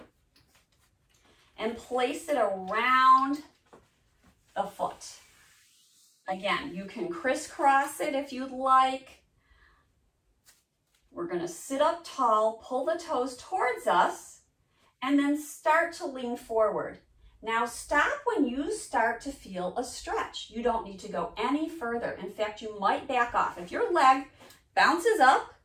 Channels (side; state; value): both; identical; correlation 1.00